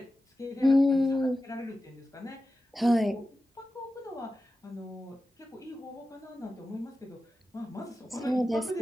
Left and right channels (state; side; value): normal; both; correlation 0.93